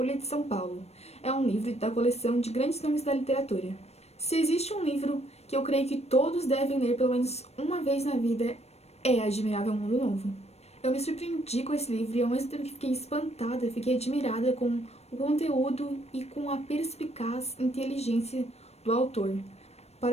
de São Paulo. É um livro da coleção de grandes nomes da literatura. Se existe um livro que eu creio que todos devem ler pelo menos uma vez na vida, é Admirável Mundo Novo. Eu me surpreendi com esse livro e ao mesmo tempo que fiquei espantada, fiquei admirada com o conteúdo e com a perspicaz inteligência do autor.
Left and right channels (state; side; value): late; right; 0.31 ms